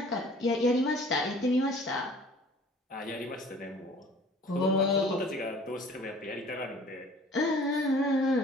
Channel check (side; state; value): both; normal; correlation 0.49